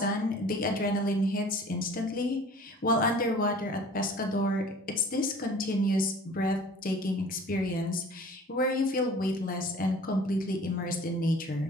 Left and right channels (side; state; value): both; normal; correlation 0.46